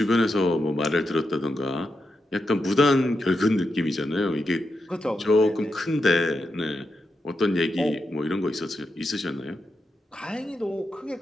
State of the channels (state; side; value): normal; both; correlation 0.86